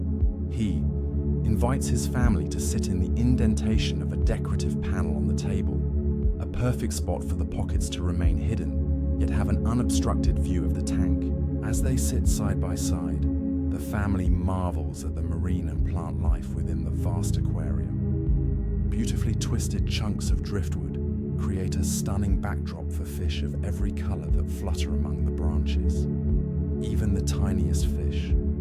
He invites his family to sit in the indentation of a decorative panel on the table, a perfect spot for the pockets to remain hidden, yet have an unobstructed view of the tank. As they sit side by side, the family marvels at the marine and plant life within the vast aquarium. Beautifully twisted chunks of driftwood create a stunning backdrop for fish of every color that flutter among the branches. Even the tiniest fish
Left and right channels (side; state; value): both; identical; correlation 1.00